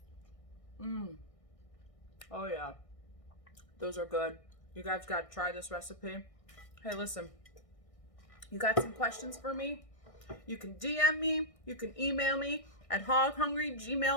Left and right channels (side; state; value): right; late; 1.6 ms